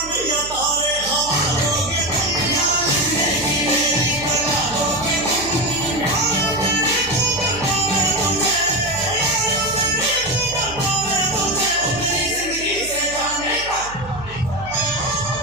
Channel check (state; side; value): noise; right; hum, 16 dB below the sound